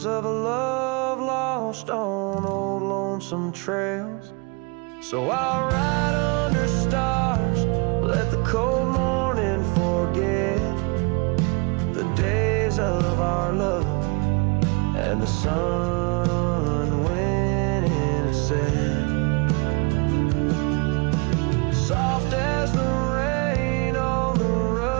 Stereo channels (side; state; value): left; quieter; 30.4 dB